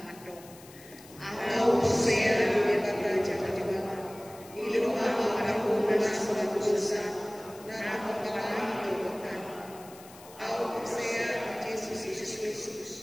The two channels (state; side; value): noise; left; hiss, 21 dB below the sound